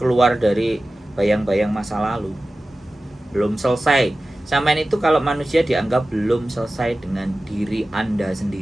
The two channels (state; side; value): normal; both; correlation 0.96